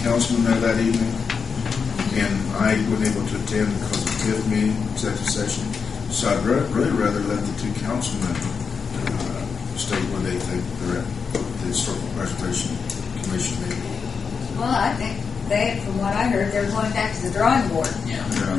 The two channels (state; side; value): quieter; right; 5.8 dB